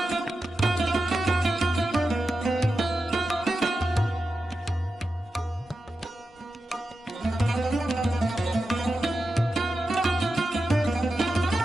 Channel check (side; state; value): both; normal; correlation 0.90